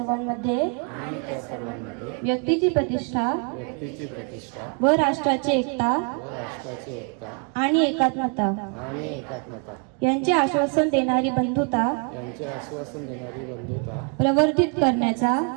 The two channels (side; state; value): left; quieter; 38.6 dB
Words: व्यक्तीची प्रतिष्ठा व राष्ट्राची एकता आणि एकात्मता यांचे आश्वासन देणारी बंधुता प्रवर्धित करण्याचा